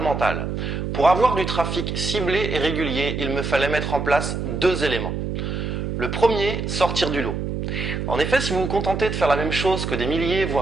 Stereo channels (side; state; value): right; noise; hum, 3 dB below the sound